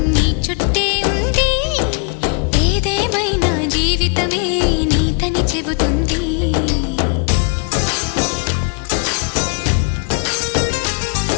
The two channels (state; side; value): quieter; right; 36.8 dB